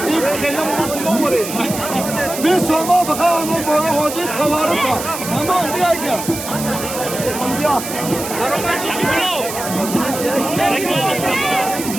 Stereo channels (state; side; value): noise; right; hiss, 8 dB below the sound